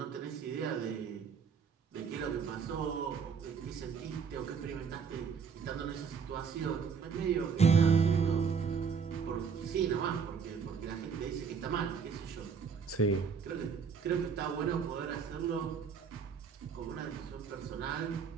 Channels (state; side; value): quieter; left; 6.1 dB